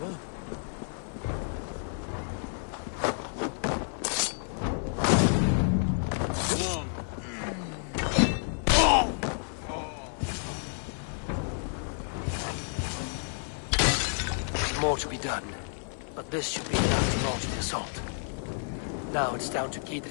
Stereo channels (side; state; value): right; silent; 58 dB below the other